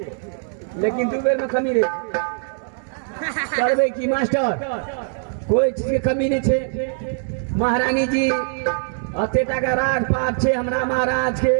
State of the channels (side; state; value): left; silent; digital silence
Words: लेकिन 2 बेर में कमी रे करबे की मास्टर कोई चीज के कमी नहीं छे महारानी जी अतेटा का राज पाट छे हमरा महाराज के